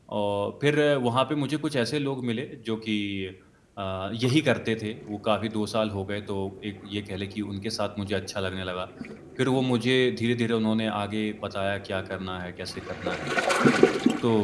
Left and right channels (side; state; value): both; identical; correlation 1.00